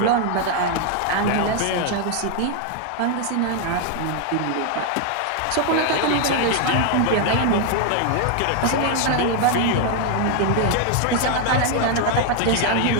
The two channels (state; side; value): different; both; correlation 0.00